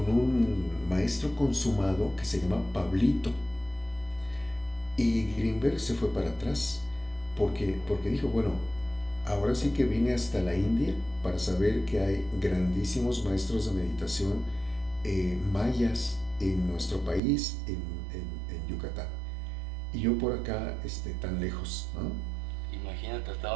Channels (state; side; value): drops out; left; at 17.2 s